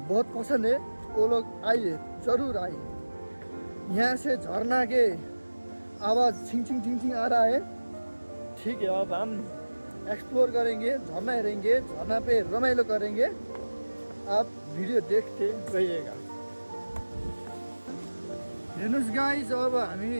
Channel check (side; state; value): both; inverted; correlation -1.00